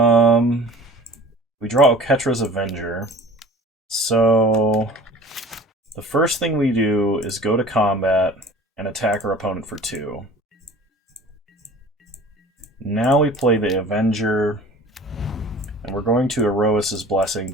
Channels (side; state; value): both; normal; correlation 0.44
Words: We draw Oketra's Avenger. So the first thing we do is go to combat and attack our opponent for 2. Now we play the Avenger, and we're going to Erois's Blessing,